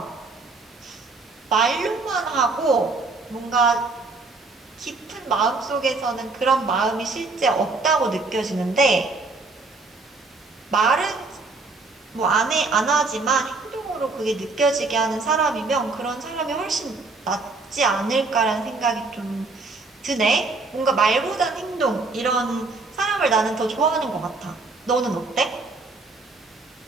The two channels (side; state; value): left; quieter; 3.7 dB